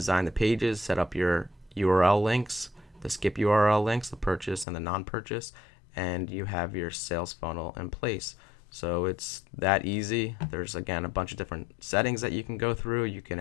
the pages, set up your URL links, the skip URL links, the purchase and the non-purchase, and you have your sales funnel in place. So it's that easy. There's again a bunch of different settings that you can go through. You can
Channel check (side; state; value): right; drops out; at 4.7 s